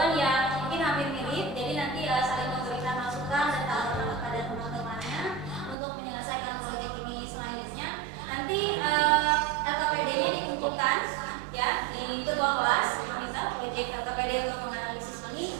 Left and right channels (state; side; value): drops out; left; at 5.8 s